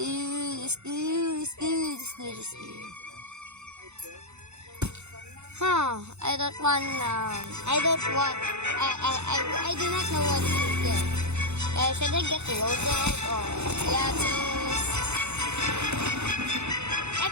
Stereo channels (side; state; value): left; late; 0.81 ms